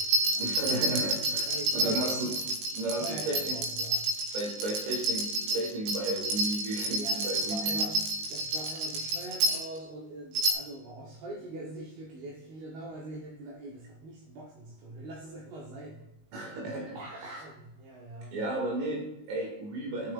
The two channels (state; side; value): late; left; 19 ms